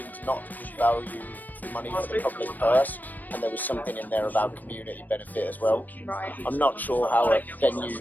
not to be value for money for the public purse, and there was something in there about community benefit as well. Right. I'm not sure how a venue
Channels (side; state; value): right; late; 0.086 ms